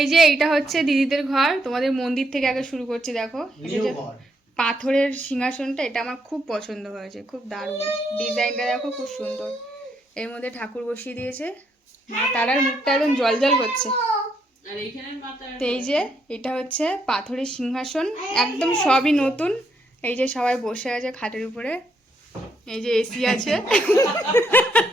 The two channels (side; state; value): both; normal; correlation 0.75